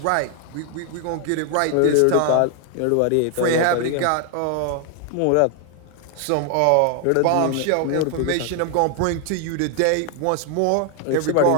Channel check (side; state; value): both; different; correlation 0.00